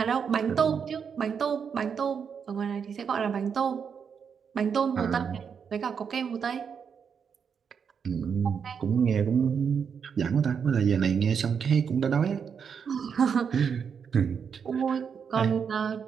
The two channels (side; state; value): left; quieter; 6.8 dB